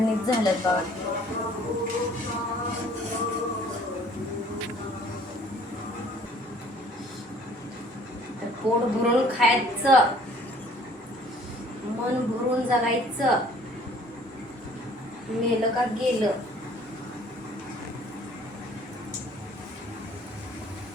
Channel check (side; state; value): both; normal; correlation 0.55